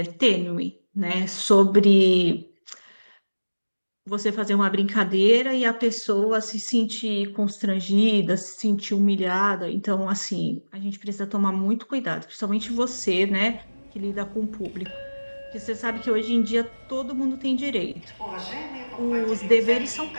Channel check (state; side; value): inverted; both; correlation -1.00